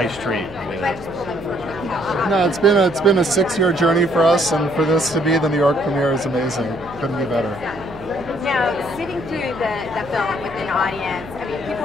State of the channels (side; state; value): right; noise; hum, 19 dB below the sound